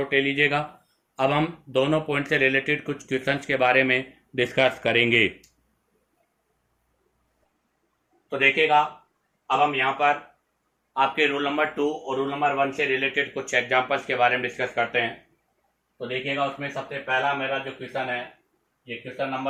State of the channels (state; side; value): identical; both; correlation 1.00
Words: ले लीजिएगा। अब हम दोनों पॉइंट से रिलेटेड कुछ क्वेश्चंस के बारे में डिस्कस करेंगे। तो देखिएगा, अब हम यहाँ पर आपके रूल नंबर 2 और रूल नंबर 1 से रिलेटेड कुछ एग्जांपल्स के बारे में डिस्कस करते हैं। तो देखिएगा, उसमें सबसे पहला मेरा जो क्वेश्चन है, ये क्वेश्चन